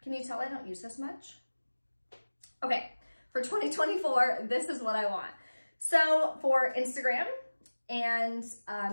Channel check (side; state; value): both; inverted; correlation -1.00